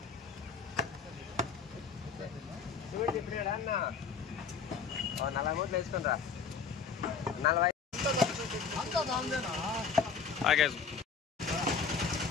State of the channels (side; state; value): right; quieter; 5.8 dB